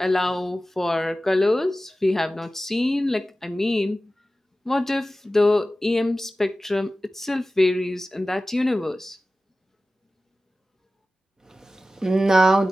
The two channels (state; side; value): normal; both; correlation 0.95